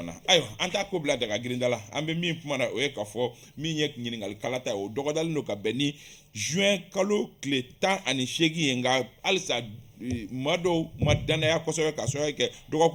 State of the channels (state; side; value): identical; both; correlation 1.00